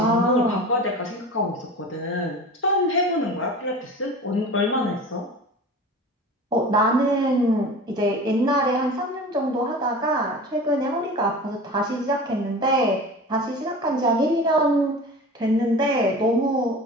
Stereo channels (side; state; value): both; normal; correlation 0.36